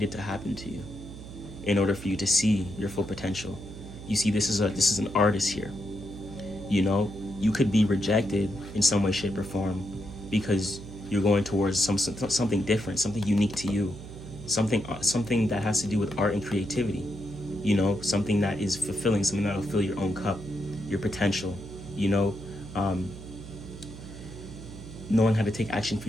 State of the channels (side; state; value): right; noise; hum, 13 dB below the sound